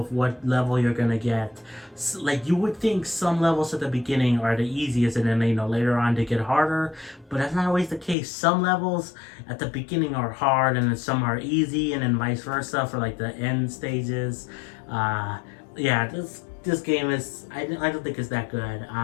what level you're gonna get. Like you would think some levels at the beginning are the easiest, and then later on they get harder, but that's not always the case. Some levels at the beginning are hard, and then some are easy, and then vice versa for like the end stages. Yeah, this game is, I don't think it's that good.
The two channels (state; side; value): drops out; right; at 8.2 s